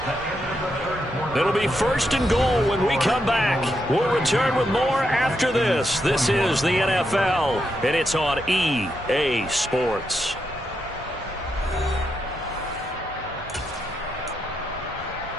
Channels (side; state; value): both; normal; correlation 0.82